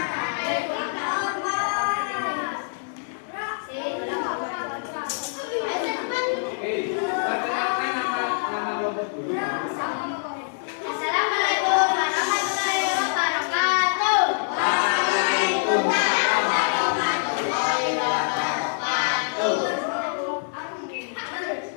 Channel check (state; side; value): silent; right; digital silence